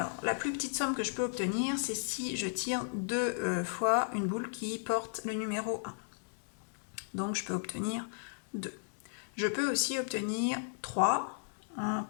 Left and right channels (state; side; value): silent; right; digital silence